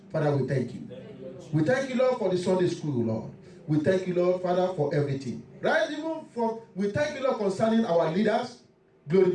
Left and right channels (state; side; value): identical; both; correlation 1.00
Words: Father, we thank you. We thank you, Lord, for the Sunday school, Lord. We thank you, Lord, Father, for everything. Right, even from, we thank you, Lord, concerning our leaders. Glory